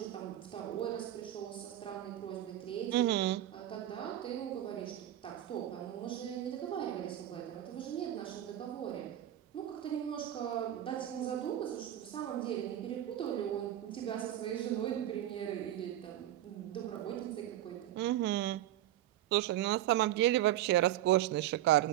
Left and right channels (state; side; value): quieter; left; 12.9 dB